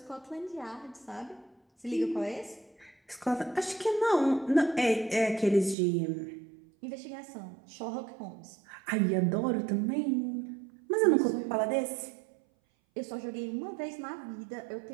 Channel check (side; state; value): left; drops out; at 5.8 s